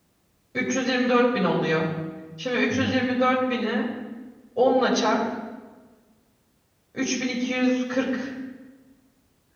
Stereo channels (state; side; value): identical; both; correlation 1.00